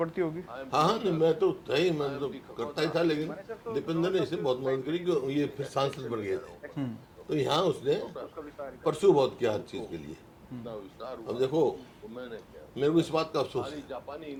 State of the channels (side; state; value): both; identical; correlation 1.00